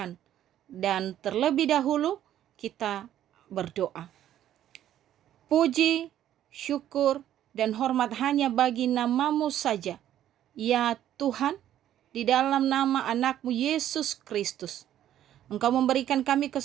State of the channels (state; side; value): quieter; left; 11.6 dB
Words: Dan terlebih dahulu kita berdoa. Puji, syukur, dan hormat hanya bagi nama-Mu saja. Ya Tuhan, di dalam nama anak-Mu Yesus Kristus, Engkau memberikan kami